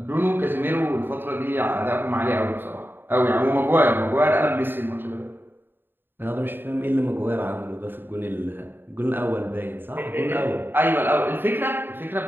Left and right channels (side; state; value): left; late; 0.097 ms